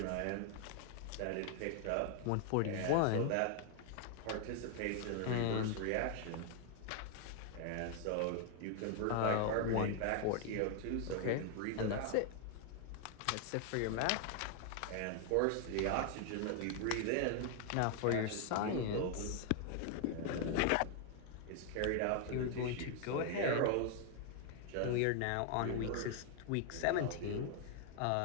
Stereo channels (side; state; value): both; different; correlation 0.00